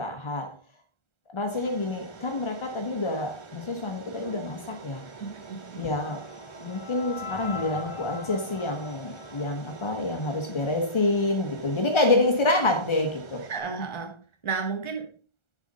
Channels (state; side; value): late; right; 1.3 ms